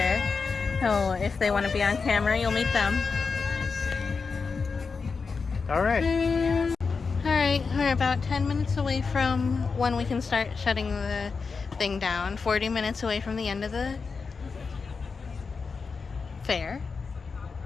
So if they want to be on camera, you'll meet them. All right. All right, we're about 10 minutes away from when we can start shutting the thing down. 40 minutes away from the end of the fair.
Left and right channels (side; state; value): right; quieter; 4.9 dB